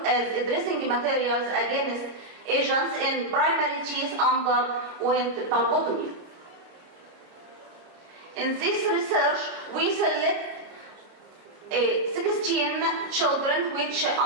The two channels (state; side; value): late; left; 29 ms